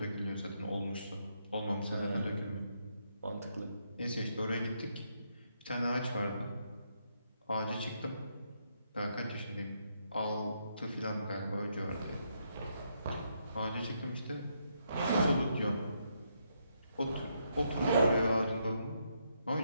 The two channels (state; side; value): inverted; both; correlation -0.77